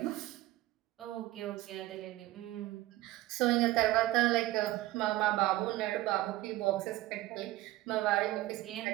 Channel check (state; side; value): quieter; left; 17.0 dB